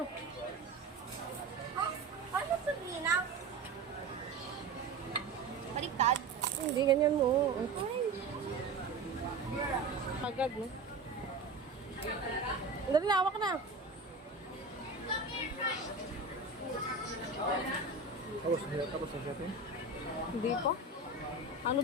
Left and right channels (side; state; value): left; quieter; 3.6 dB